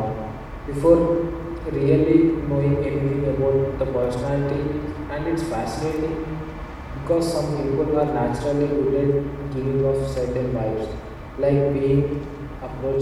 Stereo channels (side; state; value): both; identical; correlation 1.00